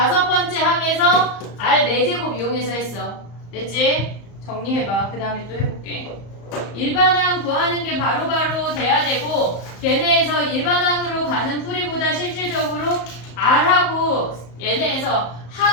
번째 항에서 R 4제곱 이용해서 했어. 됐지? 정리해봐. 그 다음에 또 해볼게. 일반항 구하는 게 바로바로 돼야 되고 얘네에서 일반항으로 가는 풀이보다 실질적으로 R하고 얘네에서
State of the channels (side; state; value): right; late; 34 ms